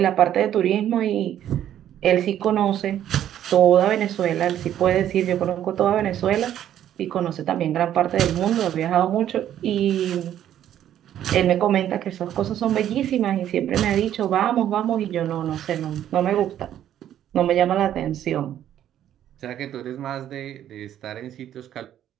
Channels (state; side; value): quieter; left; 11.1 dB